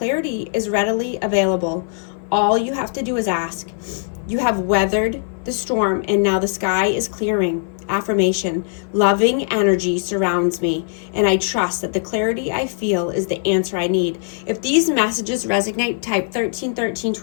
is readily available. All you have to do is ask. You have weathered the storm, and now the sky is clearing. Affirmation. Loving energy surrounds me, and I trust that the clarity I feel is the answer I need. If these messages resonate, type 1313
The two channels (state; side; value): silent; right; 57 dB below the other